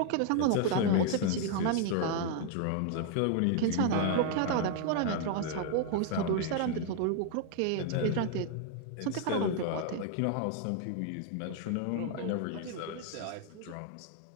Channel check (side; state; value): both; different; correlation 0.00